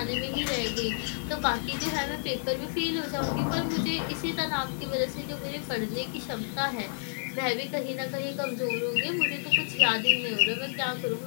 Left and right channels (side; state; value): right; silent; digital silence